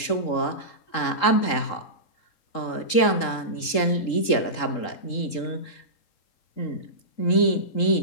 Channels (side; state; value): right; late; 3.8 ms